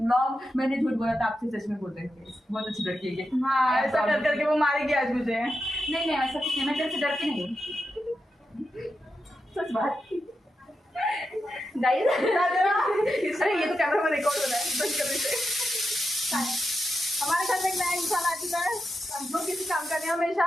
मैंने झूठ बोला था, आपसे सच में बोल रही हूँ, बहुत अच्छी लड़की है ये। हाँ, ऐसा कर करके वो मारेगी आज मुझे। नहीं नहीं ऐसा कुछ नहीं, मैं तेरे से डरती नहीं हूँ। सच बात गाइस। अरे ये तो कैमरा में रिकॉर्ड हो रहा है, बंद कर देते। हमारे घर में एक नया इंसान आ चुका है, जो किसी काम का नहीं, हमेशा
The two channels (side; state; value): both; normal; correlation 0.88